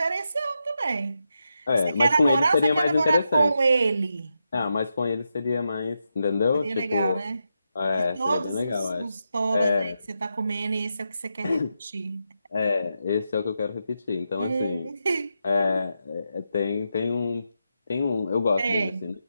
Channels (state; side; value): inverted; both; correlation -0.86